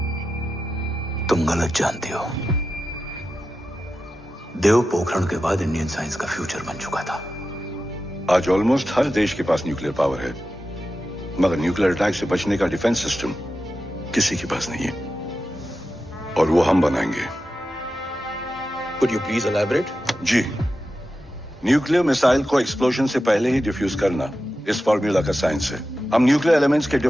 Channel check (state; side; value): normal; both; correlation 0.91